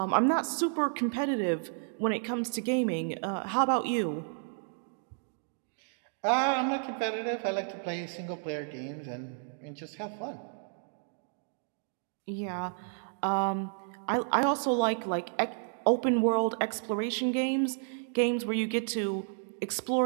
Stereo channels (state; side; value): silent; left; digital silence